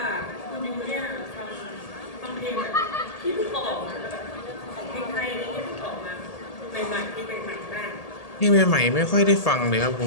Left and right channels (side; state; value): right; late; 1.8 ms